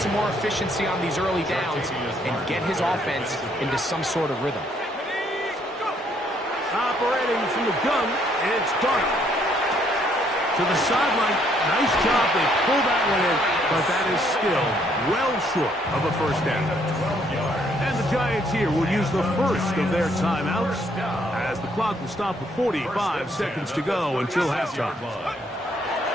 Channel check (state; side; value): normal; both; correlation 0.68